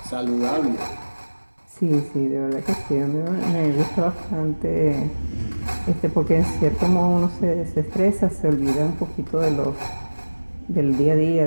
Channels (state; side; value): inverted; both; correlation -1.00